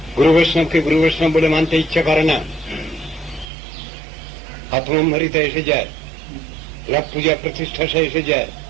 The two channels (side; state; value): left; drops out; at 3.5 s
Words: গুরু বৈষ্ণবকে গুরু বৈষ্ণব বলে মানতে ইচ্ছা করে না, আত্মম্ভারিতা এসে যায়, লাভ পূজা প্রতিষ্ঠা সে এসে যায়,